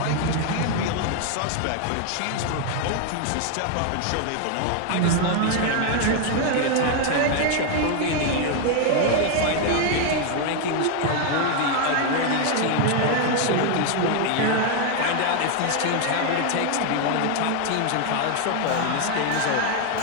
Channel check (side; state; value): both; different; correlation 0.01